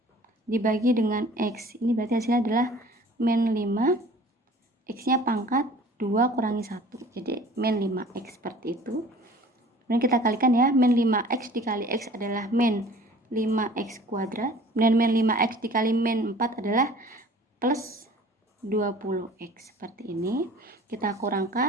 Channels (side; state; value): both; normal; correlation 0.48